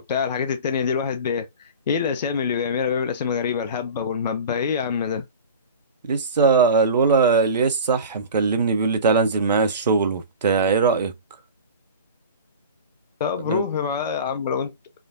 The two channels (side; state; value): both; inverted; correlation -0.34